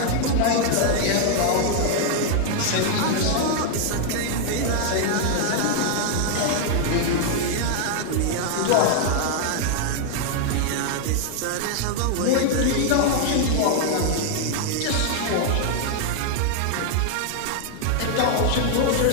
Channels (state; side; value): different; both; correlation 0.00